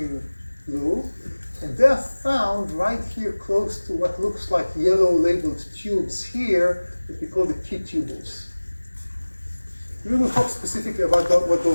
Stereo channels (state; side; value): inverted; both; correlation -1.00